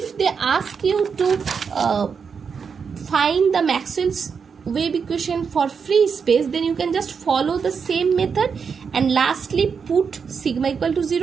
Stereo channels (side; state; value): left; quieter; 6.1 dB